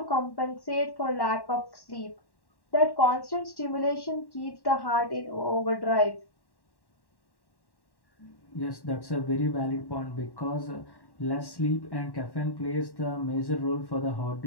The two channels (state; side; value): late; right; 1.1 ms